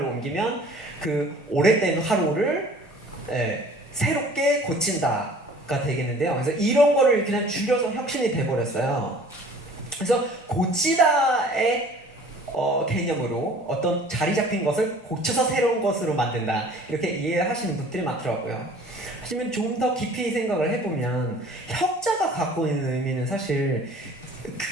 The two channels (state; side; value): normal; both; correlation 0.49